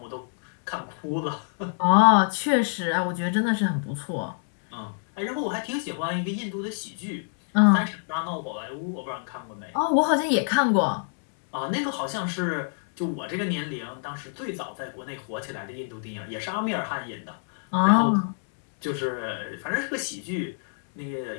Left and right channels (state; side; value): silent; right; digital silence